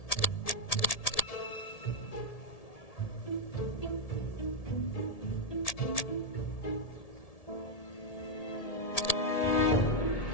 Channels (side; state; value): right; late; 1.7 ms